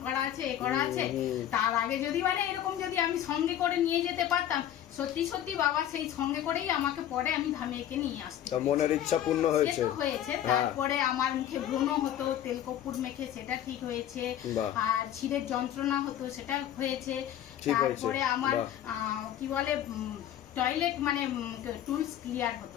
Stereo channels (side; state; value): right; quieter; 11.1 dB